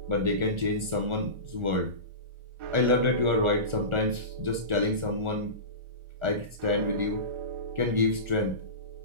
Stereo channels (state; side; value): late; left; 1.4 ms